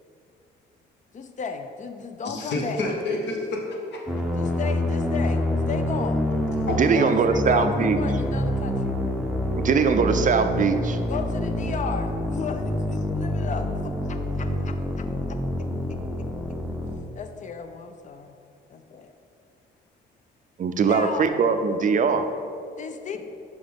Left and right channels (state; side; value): normal; both; correlation 0.53